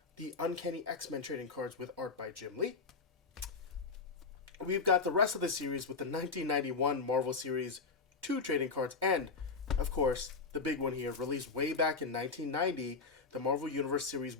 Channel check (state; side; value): quieter; right; 4.6 dB